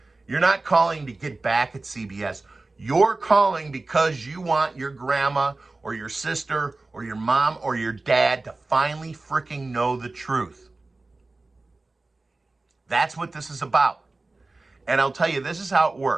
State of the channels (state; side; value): quieter; left; 3.3 dB